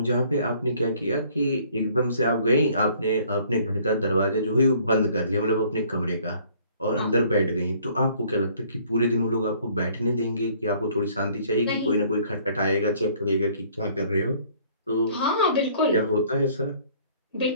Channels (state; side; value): inverted; both; correlation -0.58